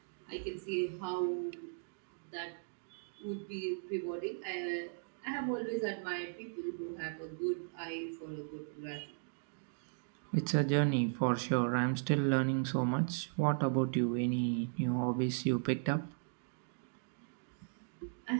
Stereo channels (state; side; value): silent; left; digital silence